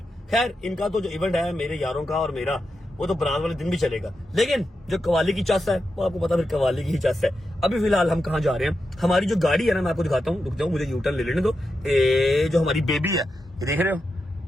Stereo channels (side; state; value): both; normal; correlation 0.88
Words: खैर इनका तो जो इवेंट है मेरे यारों का और मेरा, वो तो बारात वाले दिन भी चलेगा, लेकिन जो कवाली की चस है वो आपको पता, फिर कवाली की ही चस है। अभी फिलहाल हम कहाँ जा रहे हैं? हमारी जो गाड़ी है ना, मैं आपको दिखाता हूँ, रुक जाओ मुझे यूटर्न ले लेने दो। जो हमारी बेबी है, ये देख रहे हो,